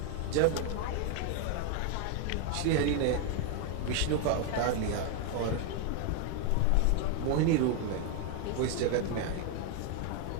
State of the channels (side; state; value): both; different; correlation 0.01